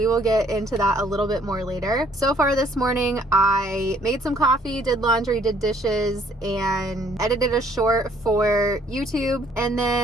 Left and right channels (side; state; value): both; normal; correlation 0.62